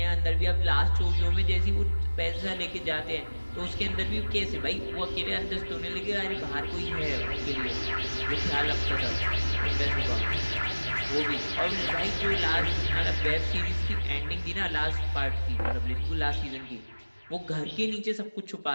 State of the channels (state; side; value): inverted; both; correlation -1.00